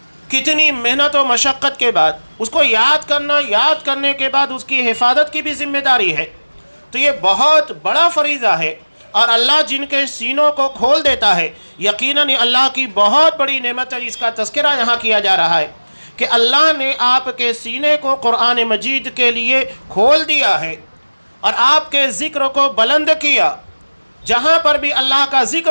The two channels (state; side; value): inverted; both; correlation -1.00